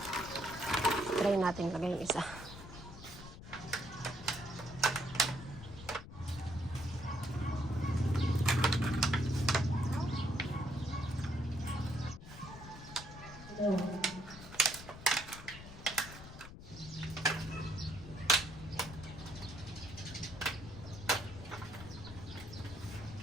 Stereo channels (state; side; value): noise; left; rumble, 14 dB below the sound